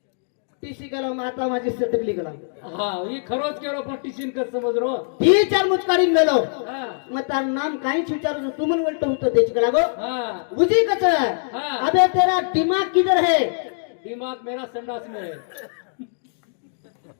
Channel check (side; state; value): right; silent; digital silence